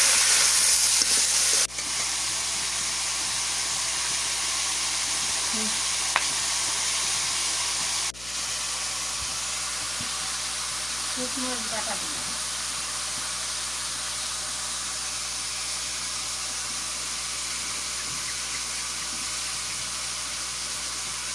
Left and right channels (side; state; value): left; noise; hum, 17 dB below the sound